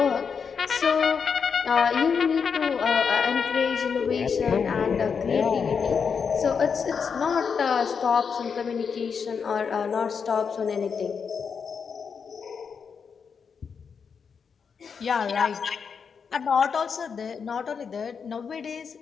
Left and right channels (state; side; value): quieter; right; 6.2 dB